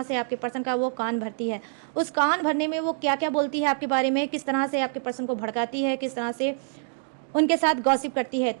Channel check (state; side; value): silent; left; digital silence